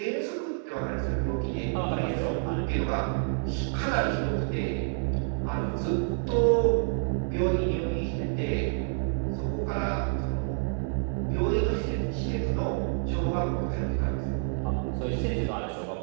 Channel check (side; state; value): left; silent; 59 dB below the other